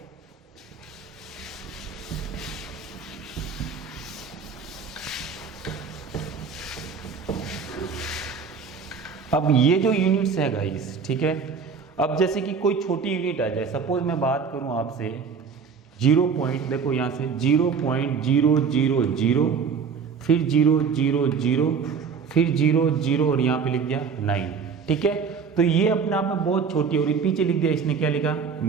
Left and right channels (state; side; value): quieter; left; 5.9 dB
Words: अब ये जो यूनिट्स है गाइस, ठीक है, अब जैसे कि कोई छोटी यूनिट आ जाए, सपोज मैं बात करूं आपसे 0 पॉइंट, देखो यहाँ से 0.000, फिर 000, फिर 00 और यहाँ पे लिख दिया 9, ठीक है। तो ये अपने आप में बहुत छोटी, और पीछे लिख दिया, इसने क्या लिखा,